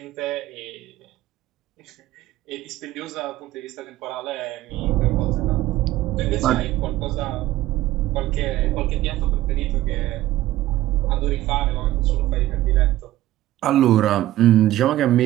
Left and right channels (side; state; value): left; quieter; 15.1 dB